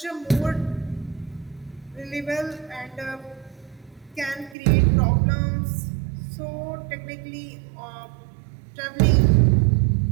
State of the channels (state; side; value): drops out; left; at 4.5 s